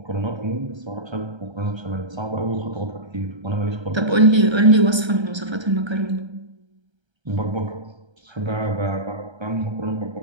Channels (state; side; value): late; left; 1.3 ms